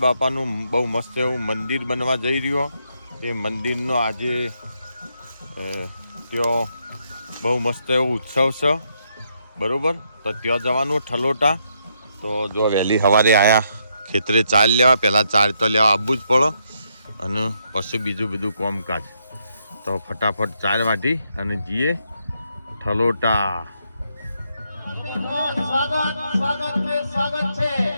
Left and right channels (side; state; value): both; inverted; correlation -0.77